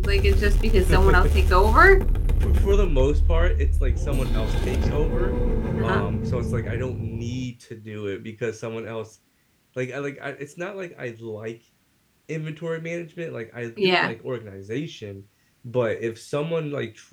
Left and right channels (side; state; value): both; identical; correlation 1.00